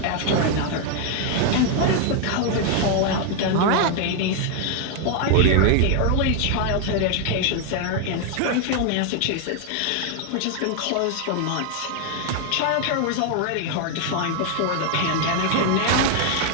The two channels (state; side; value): different; both; correlation 0.00